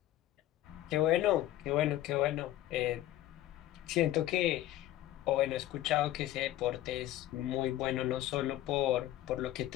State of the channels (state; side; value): quieter; right; 14.1 dB